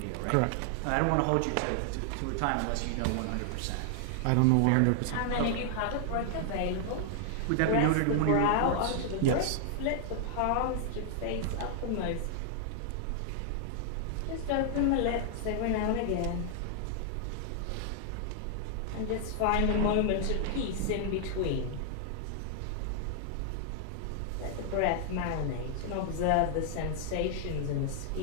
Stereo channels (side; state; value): both; different; correlation 0.00